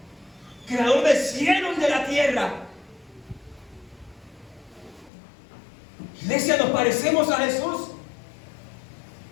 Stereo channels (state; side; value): drops out; right; at 5.1 s